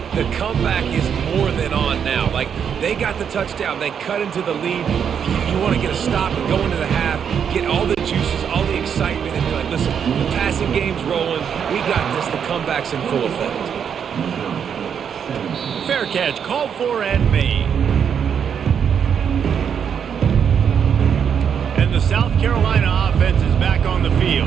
the comeback is more than on now. Like, they got the touchdown. They cut into the lead. You want to get a stop and go into the half, get all the juices, all the excitement, and be like, listen, the passing game's rolling. We got this. The comeback's in full effect. Fair catch, called for and made. And the South Carolina offense is back on the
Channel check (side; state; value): left; quieter; 7.7 dB